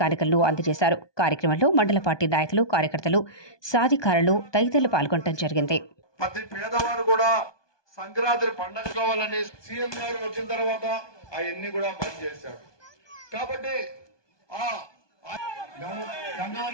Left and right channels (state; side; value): late; right; 1.2 ms